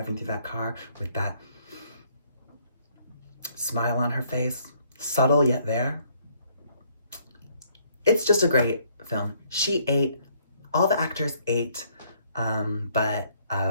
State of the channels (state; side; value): inverted; both; correlation -0.66